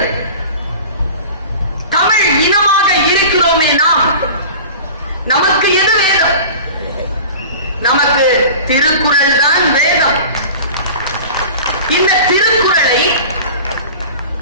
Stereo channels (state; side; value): inverted; both; correlation -0.38